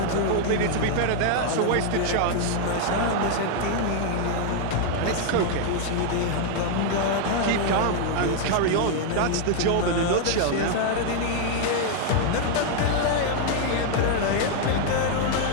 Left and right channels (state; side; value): different; both; correlation 0.00